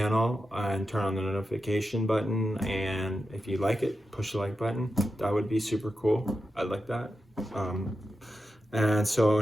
and turn on the notification button. And if you like it, push the like button. That would be super cool. I'd like that. And so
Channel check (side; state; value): both; normal; correlation 0.90